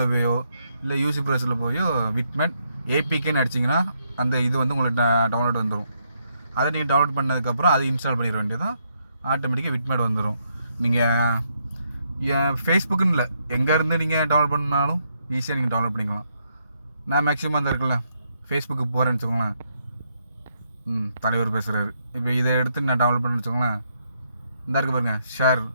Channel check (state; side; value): inverted; both; correlation -0.76